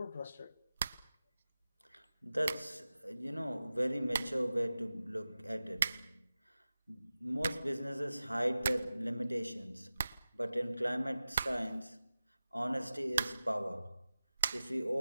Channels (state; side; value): inverted; both; correlation -0.95